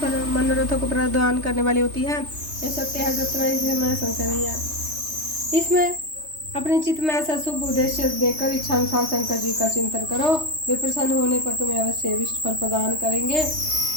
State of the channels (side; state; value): left; late; 3.2 ms